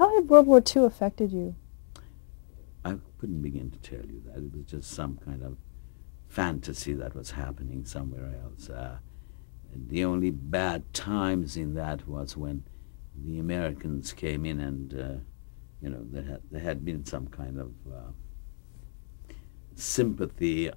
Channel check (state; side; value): silent; right; digital silence